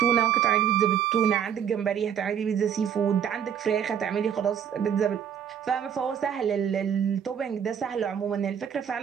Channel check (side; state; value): left; quieter; 8.5 dB